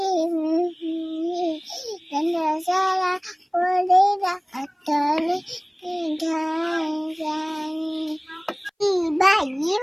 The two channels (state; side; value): identical; both; correlation 1.00